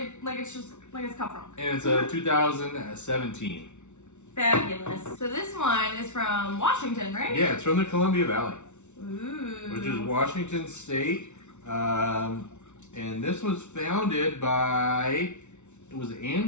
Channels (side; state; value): right; late; 0.83 ms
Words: Cab Franc. And it's a 2017. Fabulous. So this one is from Washington, right? Yeah, it's from the Columbia Valley. Ooh. Which is Washington State. And this was founded by, was it